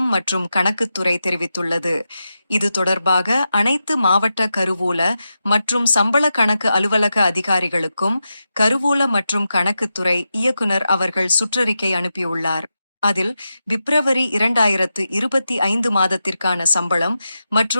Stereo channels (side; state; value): both; inverted; correlation -0.89